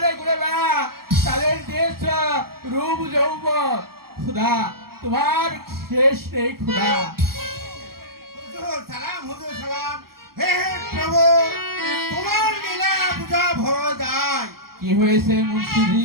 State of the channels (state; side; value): late; left; 0.93 ms